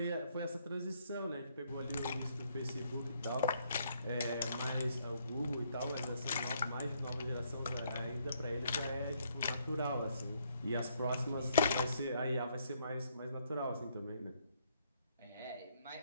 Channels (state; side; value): inverted; both; correlation -0.70